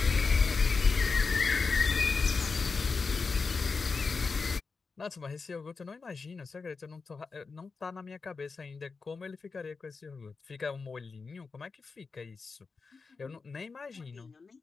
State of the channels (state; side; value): quieter; right; 4.6 dB